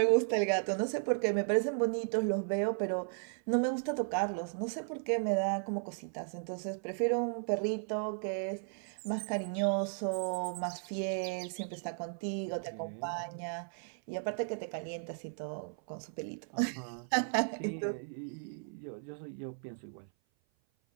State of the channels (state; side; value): silent; left; 54 dB below the other